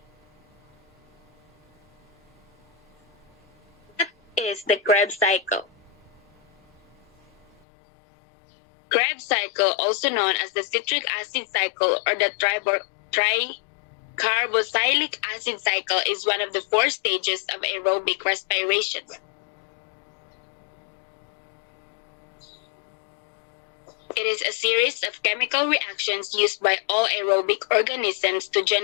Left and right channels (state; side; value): drops out; right; at 7.5 s